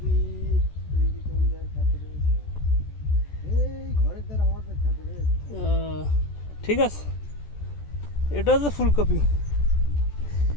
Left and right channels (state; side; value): late; right; 14 ms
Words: ঠিক আছে, এটা হচ্ছে ফুলকপি।